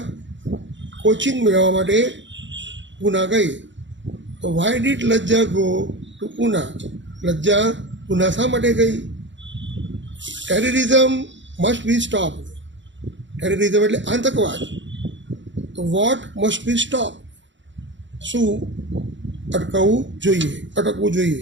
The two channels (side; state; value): left; late; 0.54 ms